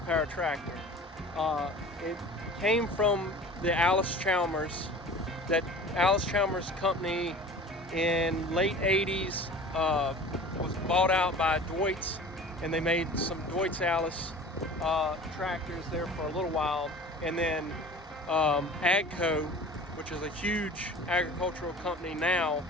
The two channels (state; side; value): normal; both; correlation 0.41